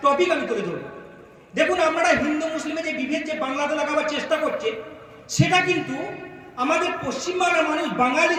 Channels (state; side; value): identical; both; correlation 1.00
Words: টপিক আমি তুলে ধরব। দেখুন, আপনারা হিন্দু মুসলিমের যে বিভেদ যে বাংলাতে লাগাবার চেষ্টা করছে, সেটা কিন্তু আমাদের পশ্চিমবাংলার মানুষ বাঙালি